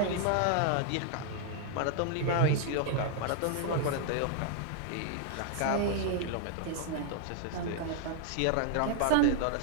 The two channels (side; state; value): both; different; correlation -0.01